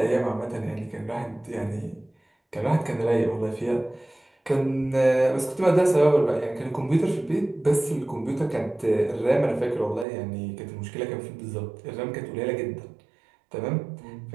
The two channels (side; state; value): left; drops out; at 10.1 s